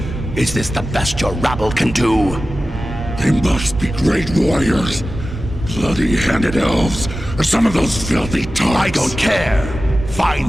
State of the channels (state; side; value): normal; both; correlation 0.94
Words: Is this the best your rabble can do? They must be great warriors. Bloody-handed elves, or some of those filthy tarts. I don't care.